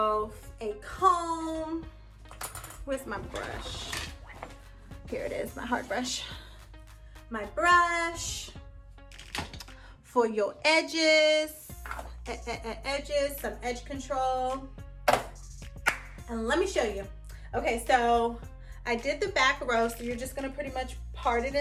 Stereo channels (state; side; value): identical; both; correlation 1.00